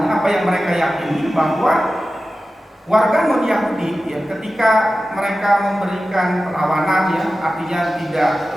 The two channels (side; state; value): both; normal; correlation 0.94